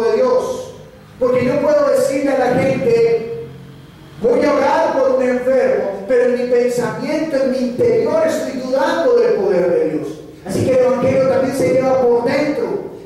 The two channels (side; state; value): both; identical; correlation 1.00